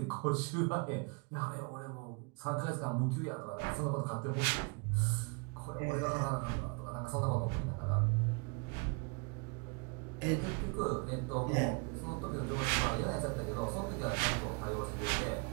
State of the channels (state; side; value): quieter; left; 30.5 dB